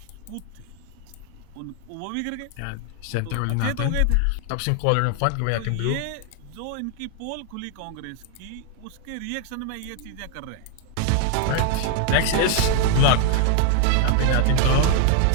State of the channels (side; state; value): both; different; correlation 0.00